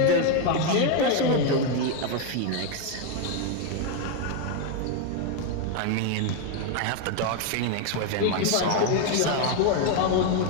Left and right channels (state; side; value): different; both; correlation 0.01